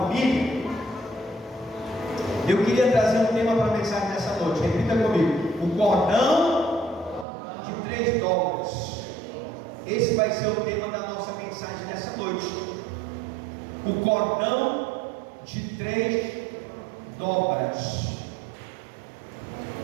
eu queria trazer um tema para a mensagem nessa noite. Repita comigo: o cordão de 3 dobras. Esse vai ser o tema da nossa mensagem nessa noite. O cordão de 3 dobras.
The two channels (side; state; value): left; drops out; at 7.2 s